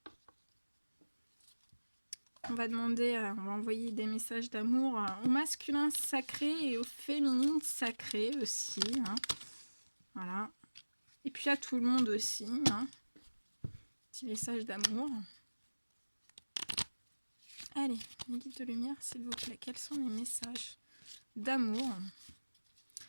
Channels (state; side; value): inverted; both; correlation -1.00